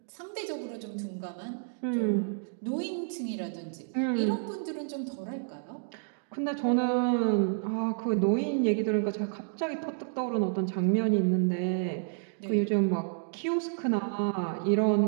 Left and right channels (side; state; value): left; silent; digital silence